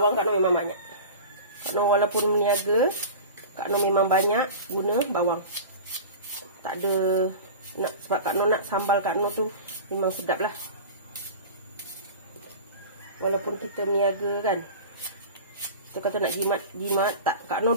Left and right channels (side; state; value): both; inverted; correlation -0.34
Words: Kak Noh memang banyak. Kak Noh walaupun meniaga, Kak Noh memang banyak guna bawang. Tak ada sebab Kak Noh nak sambal Kak Noh tu memang sedap lah. Walaupun kita meniaga kan, kita kata nak jimat tak. Kak Noh